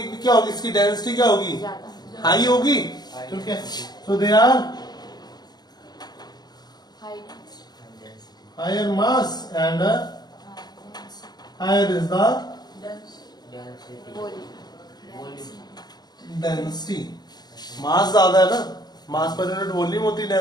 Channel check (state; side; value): late; right; 0.20 ms